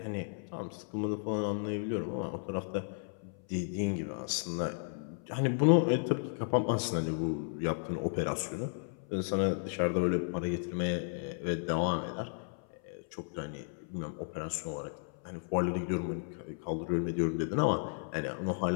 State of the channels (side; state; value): right; silent; 55 dB below the other